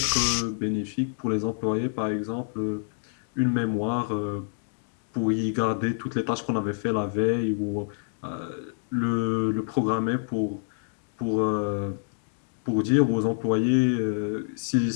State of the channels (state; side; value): silent; right; digital silence